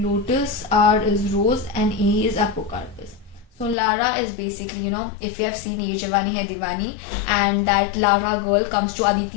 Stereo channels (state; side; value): drops out; right; at 3.8 s